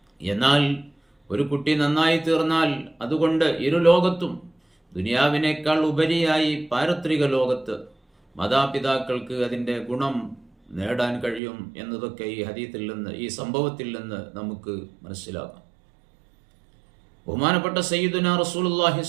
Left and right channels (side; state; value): left; drops out; at 11.4 s